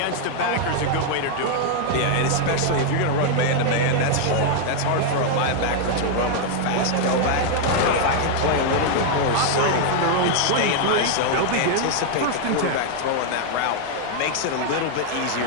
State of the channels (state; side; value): different; both; correlation 0.00